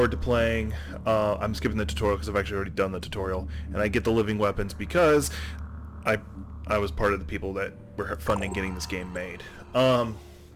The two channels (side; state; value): both; identical; correlation 1.00